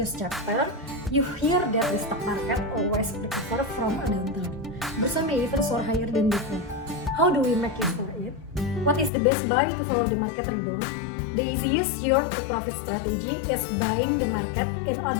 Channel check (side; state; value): right; drops out; at 9.1 s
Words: chapter, you hear that the stock market always recover from a downturn. Some may even soar higher than before. How do we make it for it? What is the best buy to follow the market rebound? The easiest yield to profit strategy is buying the market, in